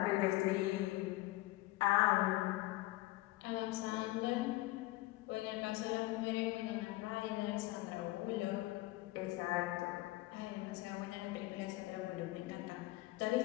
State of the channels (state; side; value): quieter; right; 18.9 dB